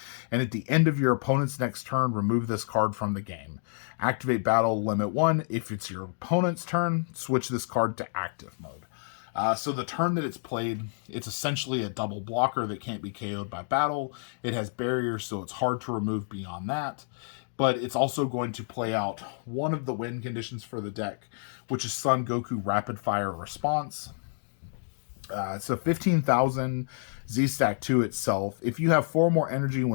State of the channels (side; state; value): right; silent; digital silence